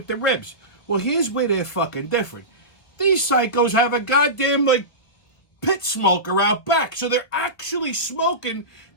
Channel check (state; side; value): late; right; 1.7 ms